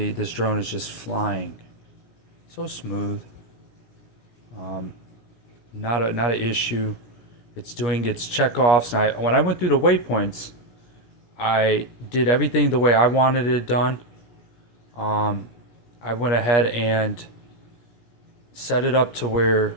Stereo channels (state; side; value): late; right; 17 ms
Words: this drone is just flying. So smooth. Not an issue. It's doing its checkoffs. And when I went through the waypoints, I did everything the way I wanted it done. I went ahead and set it up to where